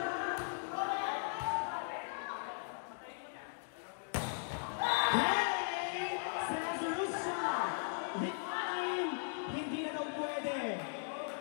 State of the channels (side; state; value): right; silent; digital silence